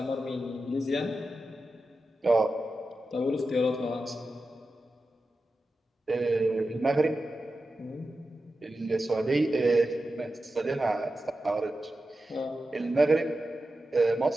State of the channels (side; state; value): both; normal; correlation 0.92